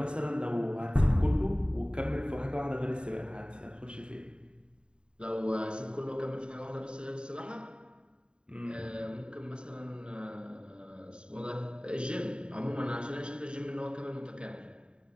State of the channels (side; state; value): left; late; 0.050 ms